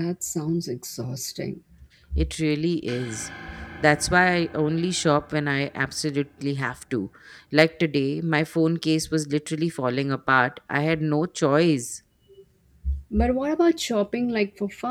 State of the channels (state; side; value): identical; both; correlation 1.00